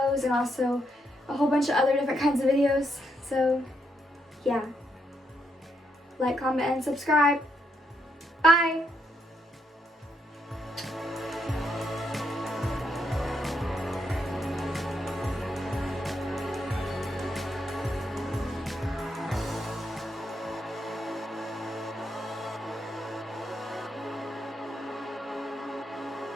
and also a whole bunch of other different kinds of videos. So, yeah. Like, comment, and subscribe. Bye!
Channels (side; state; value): both; normal; correlation 0.78